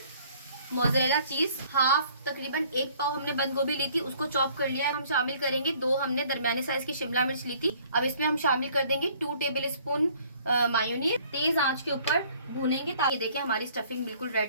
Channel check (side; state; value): both; inverted; correlation -0.57